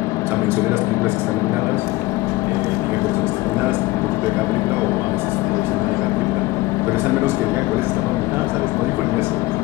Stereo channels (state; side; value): quieter; right; 19.7 dB